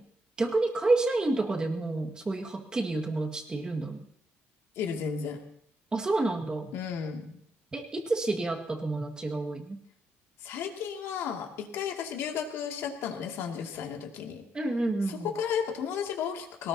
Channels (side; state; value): both; normal; correlation 0.77